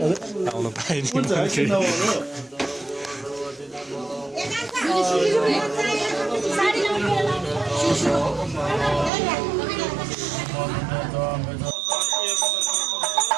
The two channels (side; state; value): left; drops out; at 9.1 s